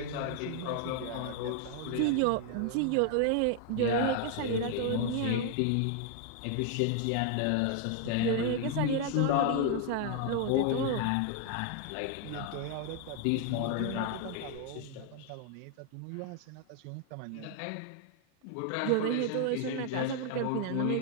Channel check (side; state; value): both; different; correlation 0.00